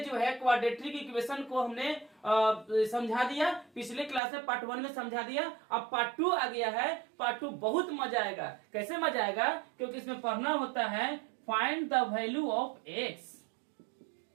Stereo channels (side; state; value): left; drops out; at 4.2 s